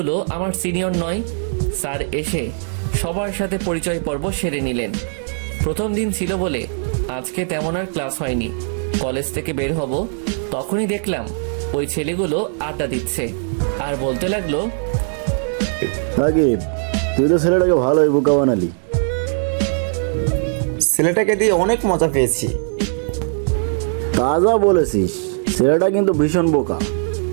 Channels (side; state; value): left; silent; 62 dB below the other